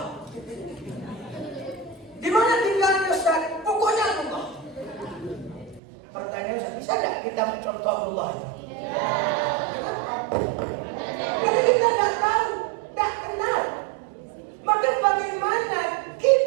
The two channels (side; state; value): left; drops out; at 5.8 s